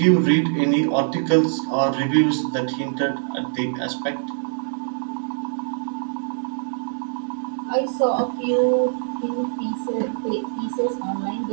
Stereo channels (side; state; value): left; silent; digital silence